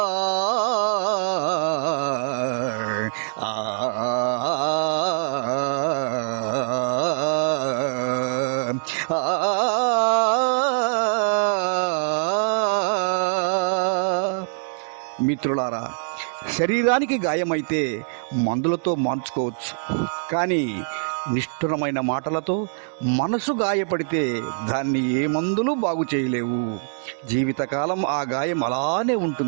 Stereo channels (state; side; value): silent; left; digital silence